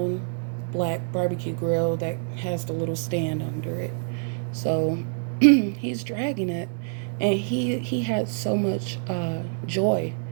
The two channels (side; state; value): left; silent; digital silence